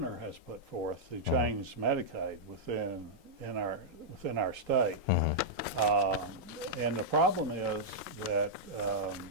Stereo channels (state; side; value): normal; both; correlation -0.08